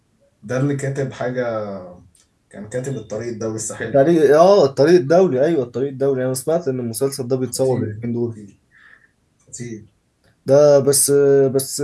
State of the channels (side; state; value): both; identical; correlation 1.00